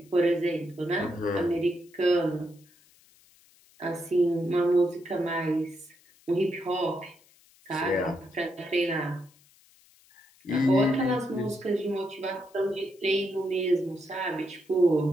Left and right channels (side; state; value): left; noise; hiss, 29 dB below the sound